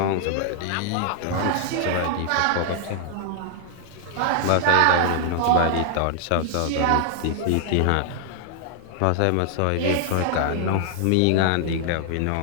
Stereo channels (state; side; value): different; both; correlation 0.00